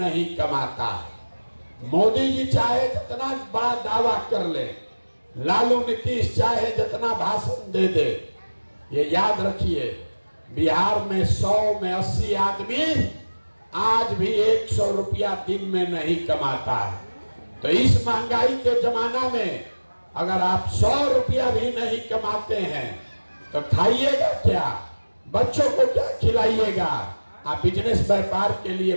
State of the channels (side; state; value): both; inverted; correlation -1.00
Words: कमाता है। मोदी जी चाहे जितना बड़ा दावा कर ले, लालू नीतीश चाहे जितना भाषण दे दे, ये याद रखिए बिहार में 100 में 80 आदमी आज भी 100 रुपया दिन में नहीं कमाता है। तो इस महंगाई के जमाना में अगर आप 100 रुपया भी नहीं कमाते हैं तो खाइएगा क्या? बच्चों को क्या खिलाइएगा? आप बिजनेस व्यापार के लिए